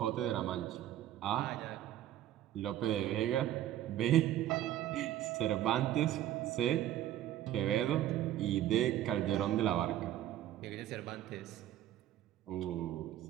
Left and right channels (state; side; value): quieter; left; 12.6 dB